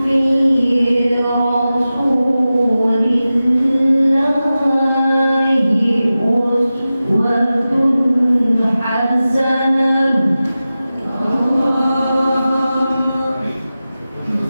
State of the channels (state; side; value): inverted; both; correlation -0.94